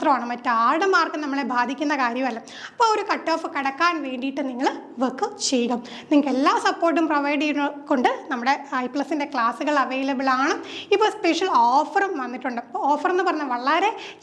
മറ്റാരുടെ മാർക്ക് നമ്മളെ ബാധിക്കുന്ന കാര്യമല്ല. അപ്പോൾ ഒരു കട്ട് ഓഫ് കടക്കാൻ വേണ്ടിയിട്ട് നിങ്ങൾ വർക്ക് ചെയ്യുക. നിങ്ങൾക്ക് എല്ലാ സപ്പോർട്ടും പ്രൊവൈഡ് ചെയ്യുന്നതുകൊണ്ട് നമ്മുടെ ഐ+ൻ്റെ ക്ലാസ്സുകൾ അവൈലബിൾ ആണ്. ഇപ്പോൾ സ്പെഷ്യൽ ഓഫറും വന്നിട്ടുണ്ട്. അപ്പോൾ ഓഫർ എന്ന് പറഞ്ഞാൽ വളരെ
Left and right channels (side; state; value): both; identical; correlation 1.00